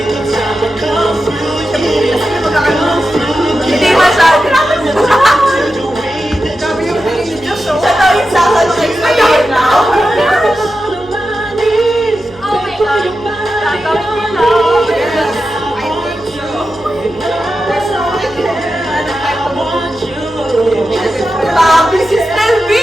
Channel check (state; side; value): noise; right; hum, 25 dB below the sound